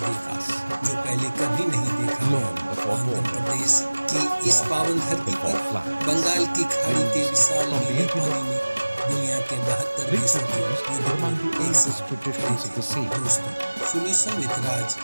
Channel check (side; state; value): both; inverted; correlation -1.00